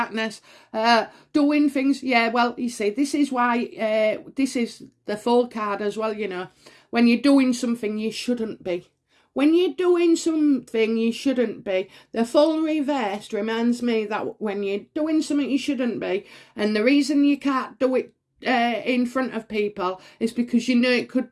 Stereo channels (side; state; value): both; identical; correlation 1.00